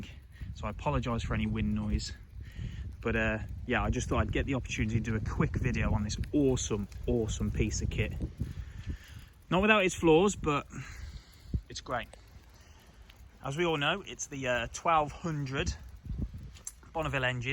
So I apologise for any wind noise. But yeah, I just thought I'd get the opportunity to do a quick video on this awesome piece of kit. Not without its flaws, but it's great. As we all know, it's the 1200 Bonneville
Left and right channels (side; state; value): both; identical; correlation 1.00